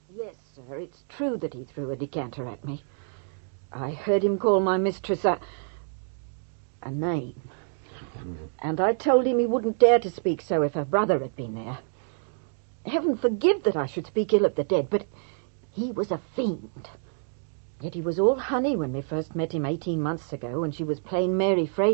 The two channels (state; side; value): silent; left; 60 dB below the other